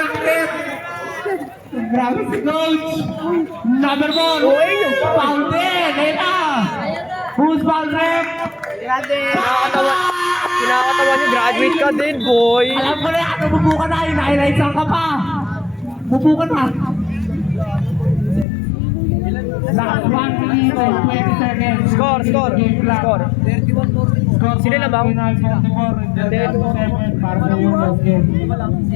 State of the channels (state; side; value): drops out; right; at 18.4 s